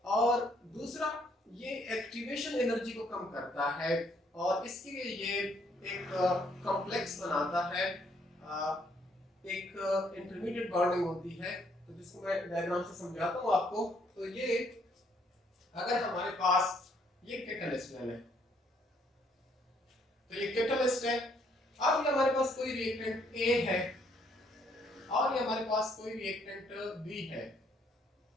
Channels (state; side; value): normal; both; correlation 0.68